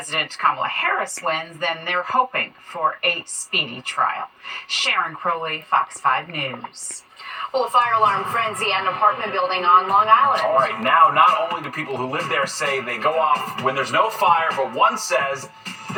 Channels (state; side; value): identical; both; correlation 1.00